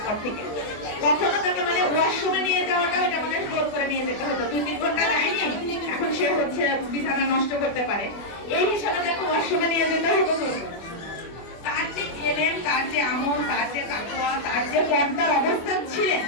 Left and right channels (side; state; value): right; late; 24 ms